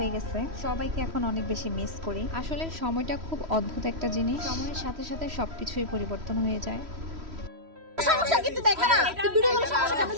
গেছে। সবাইকে এখন অনেক বেশি মিস করি। আসলে সময়টা খুব অদ্ভুত একটা জিনিস, সময়ের সাথে সাথে সবকিছুই পরিবর্তন হয়ে যায়। সমস্যা কিন্তু দেখা না তুই ভিডিও করে সমস্যা কেন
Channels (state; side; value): late; left; 3.1 ms